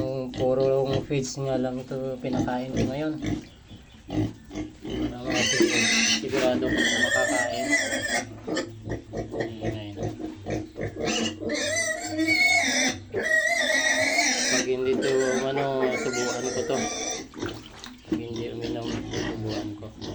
puro feeds nga lang ito pinakain ko ngayon, para sigurado ko makakain. Pag hindi to subuan ko to. Pag hindi uminom, subuan ko.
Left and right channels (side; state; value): both; identical; correlation 1.00